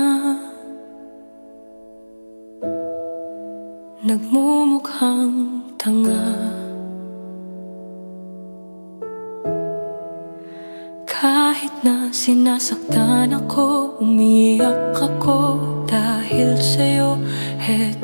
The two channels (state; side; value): inverted; both; correlation -1.00